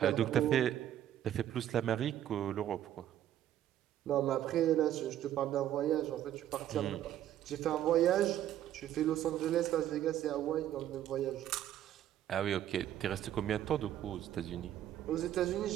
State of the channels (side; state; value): left; quieter; 11.7 dB